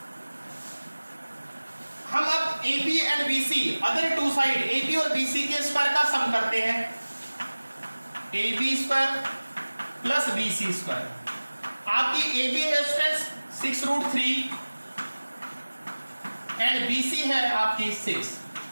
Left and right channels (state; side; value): inverted; both; correlation -1.00